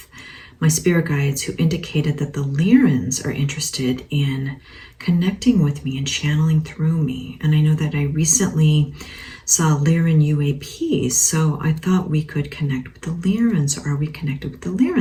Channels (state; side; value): identical; both; correlation 1.00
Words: my spirit guides who indicated that the Lyrans are interested in connecting with me and channeling through me. And I know that I recently saw Lyran UAPs, so I thought we could connect with the Lyrans. Are we connected with the